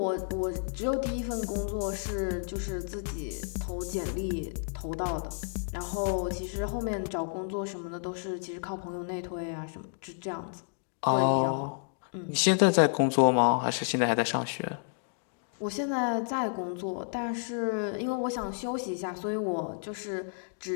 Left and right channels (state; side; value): silent; right; digital silence